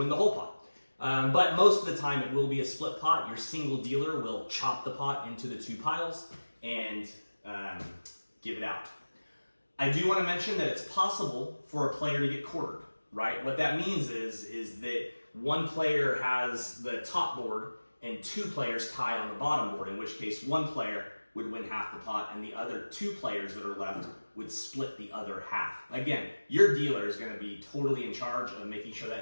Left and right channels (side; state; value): both; inverted; correlation -1.00